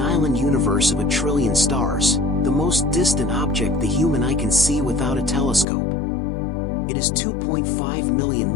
island universe of 1 trillion stars, the most distant object the human eye can see without a telescope. It is 2.5 million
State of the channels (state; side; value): drops out; right; at 5.7 s